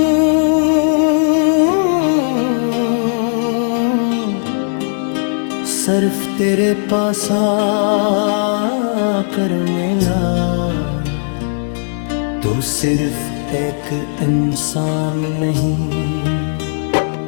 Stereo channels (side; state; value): right; silent; 62 dB below the other